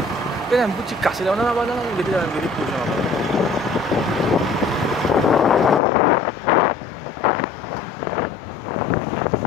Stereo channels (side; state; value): right; drops out; at 5.8 s